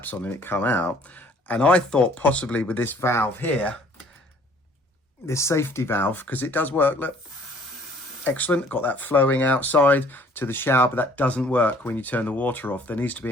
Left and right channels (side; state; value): both; normal; correlation 0.57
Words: on and it come out. And I thought possibly with this valve here, this safety valve, because it does work, look, excellent, got that flowing outside to the shower, but that doesn't work when you turn the water off. There needs to